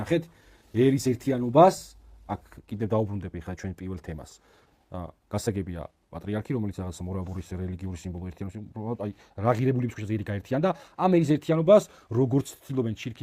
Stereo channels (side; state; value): both; identical; correlation 1.00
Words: ერის ერთიანობას აქ კიდევ დაუბრუნდები ხა ჩვენ პირველ თემას გასაგებია პატრიარქი რომელიც რაღაც მორაბურის რელიგიური სიმბოლო ერთიანობს უბრალოდ აი რა ღირებულების ქვეშ ზედი გაერთიან და ამ ერის ერთიანობას როგორც ცდილობენ